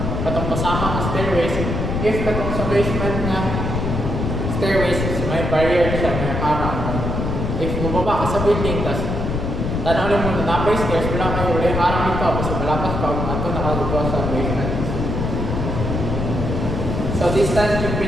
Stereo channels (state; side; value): noise; left; rumble, 2 dB below the sound